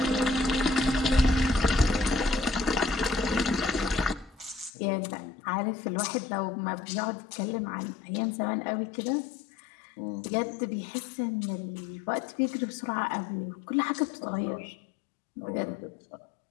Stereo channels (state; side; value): drops out; right; at 4.7 s